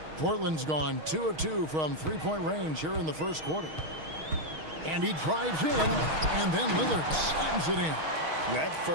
Portland's gone 2 of 2 from three-point range here in the first quarter. And he drives in, and then Lillard slams it in. That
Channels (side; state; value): left; late; 6.4 ms